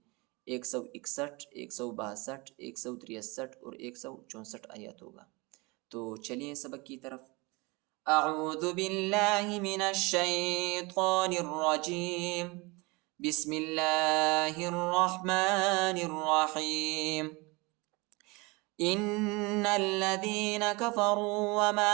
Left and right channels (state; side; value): quieter; left; 25.8 dB